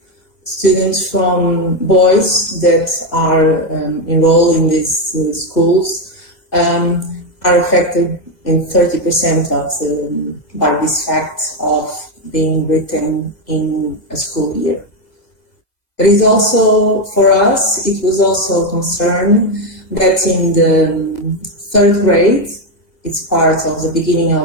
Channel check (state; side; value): late; right; 1.9 ms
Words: students from boys that are enrolled in these schools are affected in 30% by this fact of being written in a school year. But it's also, for us, it was also a concern that in the 3rd grade, it's part of the beginning